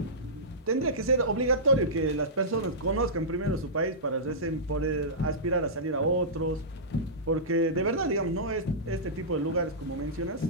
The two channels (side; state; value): both; normal; correlation -0.17